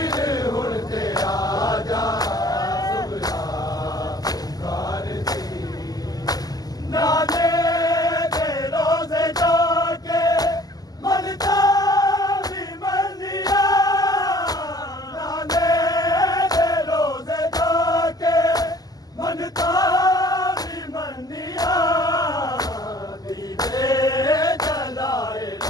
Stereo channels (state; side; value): late; right; 0.18 ms